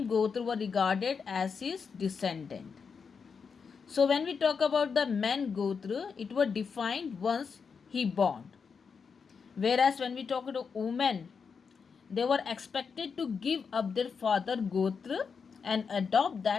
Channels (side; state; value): right; quieter; 5.8 dB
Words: Gotra were regarded as his descendant. So when we talk about the man Gotra, it was defined once he born. Whereas when we talk about women, they were expected to give up their father Gotra and adopt